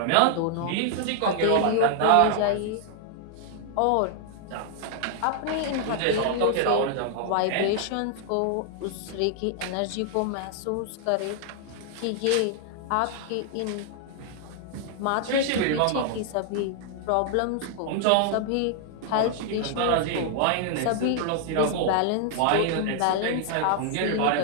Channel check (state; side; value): different; both; correlation 0.00